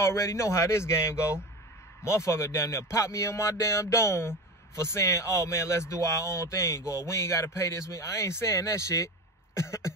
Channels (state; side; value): normal; both; correlation 0.27